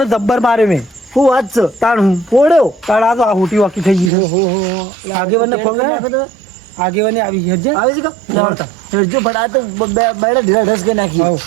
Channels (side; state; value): left; drops out; at 4.1 s